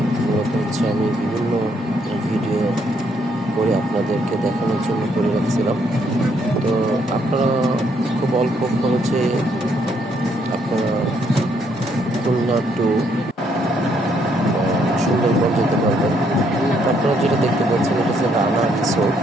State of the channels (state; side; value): normal; both; correlation 0.71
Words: মূলত আমি বিভিন্ন ভিডিও করে আপনাদেরকে দেখানোর জন্য করে রাখছিলাম। তো আপনারা খুব অল্প খরচে আপনারা খুলনা টু সুন্দরবন যেতে পারবেন। তো আপনারা যেটা দেখতে পাচ্ছেন এটা হচ্ছে রানা রিসোর্ট।